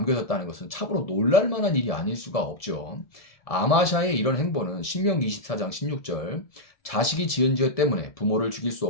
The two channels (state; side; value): late; right; 1.7 ms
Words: 것은 참으로 놀랄만한 일이 아닐 수가 없죠. 아마샤의 이런 행보는 신명기 24장 16절 자식이 지은 죄 때문에 부모를 죽일 수